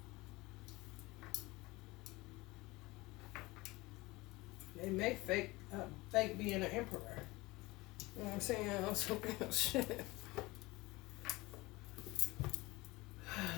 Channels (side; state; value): right; quieter; 21.6 dB